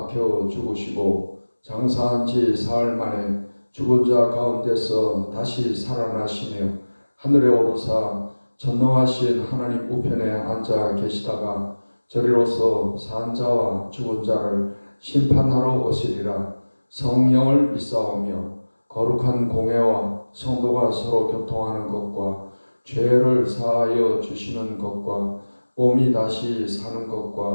죽으시고 장사한 지 사흘 만에 죽은 자 가운데서 다시 살아나시며 하늘에 오르사 전능하신 하나님 우편에 앉아 계시다가 저리로서 산 자와 죽은 자를 심판하러 오시리라. 성령을 믿사오며 거룩한 공회와 성도가 서로 교통하는 것과 죄를 사하여 주시는 것과 몸이 다시 사는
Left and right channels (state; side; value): inverted; both; correlation -1.00